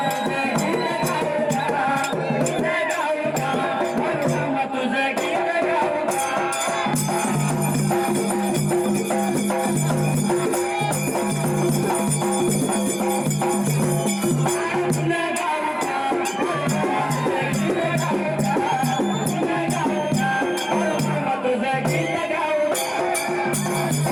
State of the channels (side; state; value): both; identical; correlation 1.00